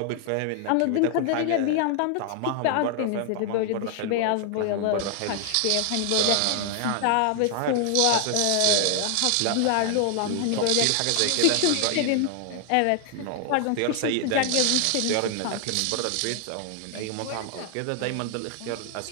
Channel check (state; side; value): different; both; correlation 0.00